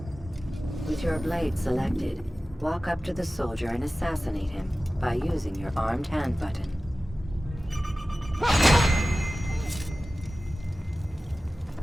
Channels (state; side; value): normal; both; correlation 0.96